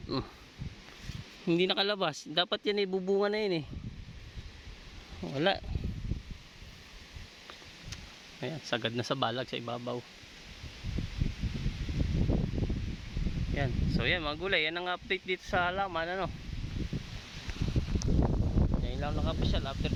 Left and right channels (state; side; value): identical; both; correlation 1.00